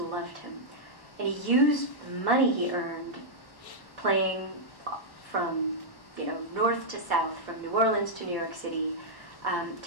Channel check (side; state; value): right; late; 1.0 ms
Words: him. And he used the money he earned playing from north to south, from New Orleans to New York City,